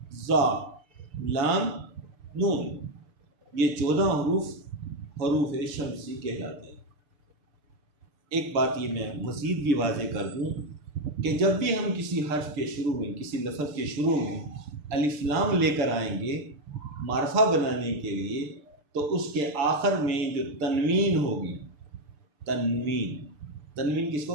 زا، لام، نون، یہ 14 حروف شمسی کہلاتے ہیں۔ ایک بات یہ میں مزید بھی واضح کر دوں کہ جب بھی ہم کسی حرف کے شروع میں، کسی لفظ کے شروع میں الف لام لے کر آئیں گے معرفہ بنانے کے لیے، تو اس کے آخر میں جو تنوین ہوگی، تنوین کس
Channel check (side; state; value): left; late; 6.8 ms